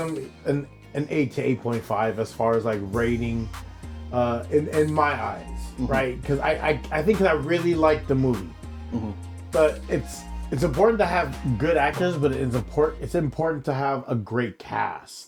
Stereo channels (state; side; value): identical; both; correlation 1.00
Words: an 8 to 8.5 as far as like rating in my eyes, right? Because I think I really liked the movie. But it's important to have good actors, but it's important to have a great cast,